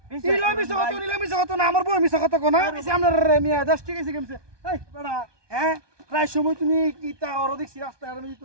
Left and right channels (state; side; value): late; left; 1.2 ms